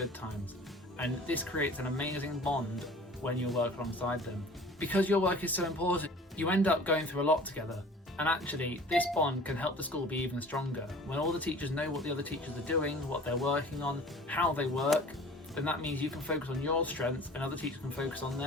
times. And this creates an amazing bond when you work alongside them. Because your work is so important, you end up going through a lot together. And actually, this bond can help the school be even stronger. When all the teachers know what the other teachers are doing, what they're working on, how they work, then that means you can focus on your strengths and other teachers can focus on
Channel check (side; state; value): both; normal; correlation 0.45